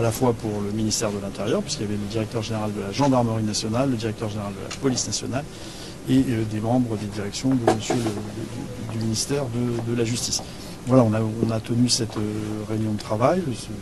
la fois pour le ministère de l'Intérieur, puisqu'il y avait le directeur général de la gendarmerie nationale, le directeur général de la police nationale, et des membres des directions de monsieur du ministère de la Justice. Voilà, on a tenu cette réunion de travail.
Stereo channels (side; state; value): both; identical; correlation 1.00